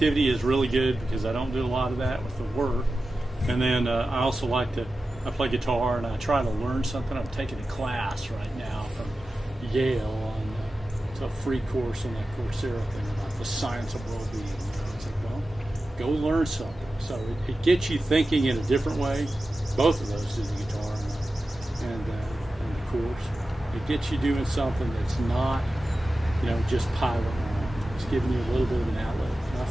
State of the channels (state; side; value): normal; both; correlation 0.93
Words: is really good because I don't do a lot of that with the work. And then I also I play guitar and I try to learn something. I'm taking a class right now from Yale on it's a free course on that Coursera thing about the science of well-being. It's like, well, go learn something. So it gets you thinking in a different way. Both of those do the guitar and the course. It gets you doing something that's not, just piling on. It's giving you a little bit of an outlet. And I